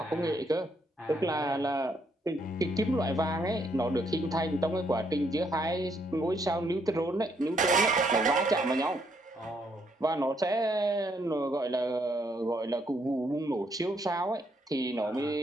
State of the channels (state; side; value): normal; both; correlation 0.73